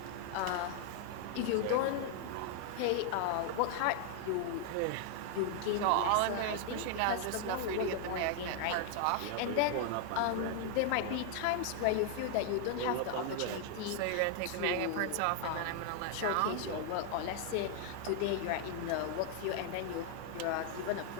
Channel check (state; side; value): different; both; correlation 0.00